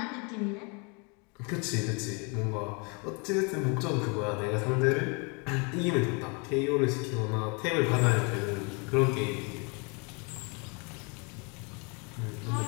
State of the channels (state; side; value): quieter; right; 32.7 dB